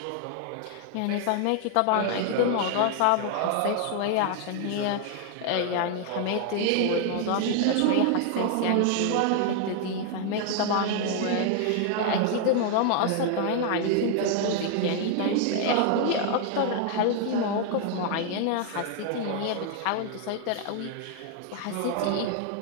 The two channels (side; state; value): both; different; correlation 0.00